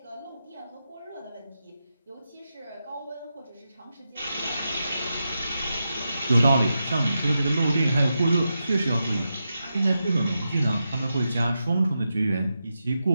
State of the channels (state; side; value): inverted; both; correlation -0.88